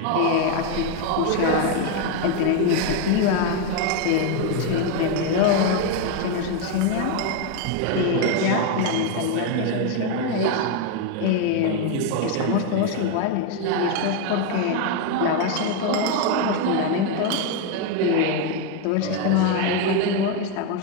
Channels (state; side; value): different; both; correlation 0.02